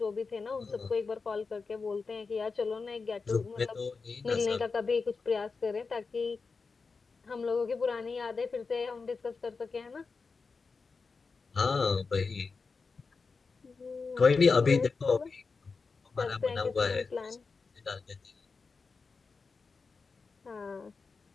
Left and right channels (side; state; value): right; quieter; 4.6 dB